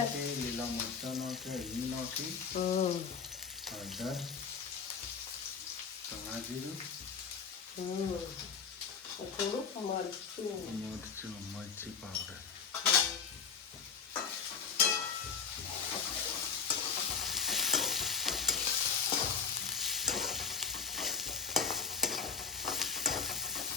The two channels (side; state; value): right; quieter; 6.1 dB